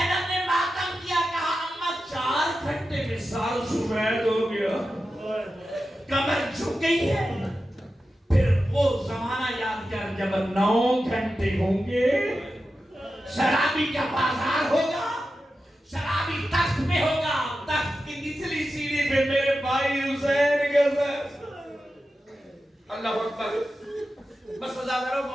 نے ماتم کیا، کہا اماں 4 گھنٹے میں سال سفید ہو گیا، کمر جھک گئی ہے۔ پھر وہ زمانہ یاد کر جب 9 گھنٹے ہوں گے، شرابی کا بازار ہوگا، شرابی تخت میں ہوگا، تخت کی نچلی سیڑھی پہ میرے بھائی حسین کا سر۔ اللہ اکبر۔ بس عزادارو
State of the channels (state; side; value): normal; both; correlation 0.92